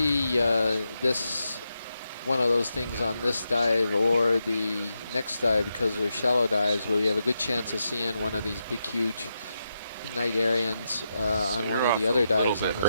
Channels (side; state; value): both; inverted; correlation -0.85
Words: one of those things on this dive or the next dive because they're shallow dives, but we have a good chance of seeing one of these big, huge night Arians on one of the other dives on